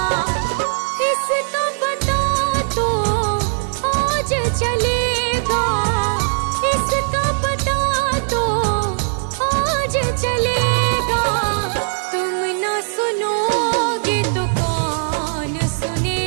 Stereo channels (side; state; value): left; silent; digital silence